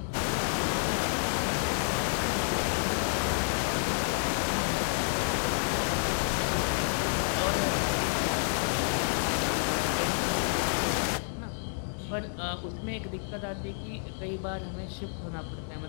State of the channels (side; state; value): right; silent; digital silence